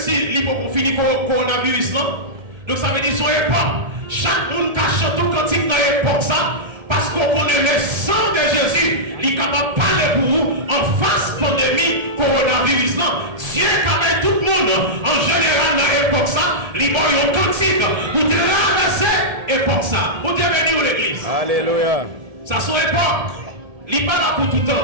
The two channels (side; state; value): left; late; 1.7 ms